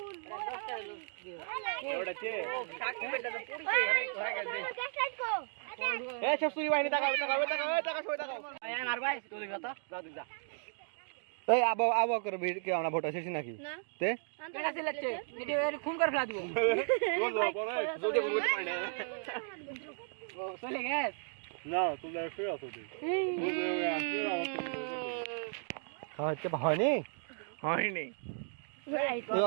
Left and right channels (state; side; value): silent; left; 54 dB below the other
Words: ওড়াছে কাকি বেটা তো পড়িছে এই সব সুরি বাহিনী টাকা সই টাকা এই আমার ভাই তুই কথা যা তুই যা এই আবো করে ভিড় কি আমরা ভোট শেষ নাকি তে কেডা সিলেক্টে ভিডিও এর খুন করে ফেলা দিব জোরে বলতে পারে না ও চলে গেছ না তুমি ফের আসো তুই হচ্ছে হয়নি হয়নি তুই